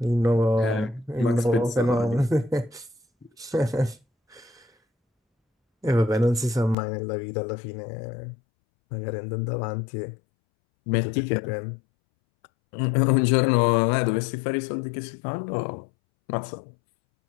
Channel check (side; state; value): right; drops out; at 6.8 s